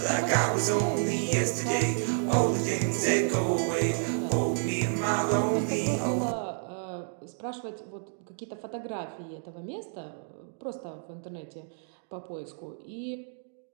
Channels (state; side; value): silent; left; digital silence